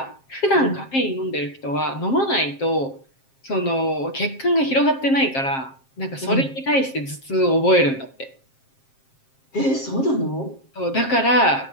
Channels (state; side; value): late; right; 7.5 ms